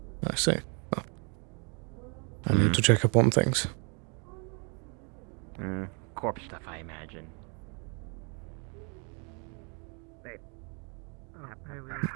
see. Well, I need to check up on things. Corpse stuff, I imagine.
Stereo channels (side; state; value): left; quieter; 36.0 dB